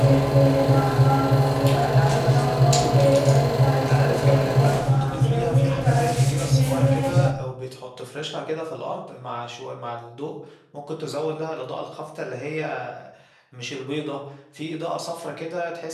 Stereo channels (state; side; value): identical; both; correlation 1.00